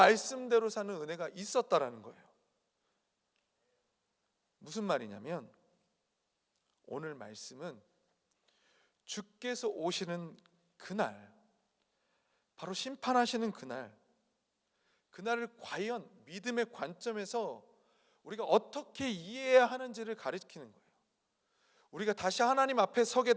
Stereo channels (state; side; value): identical; both; correlation 1.00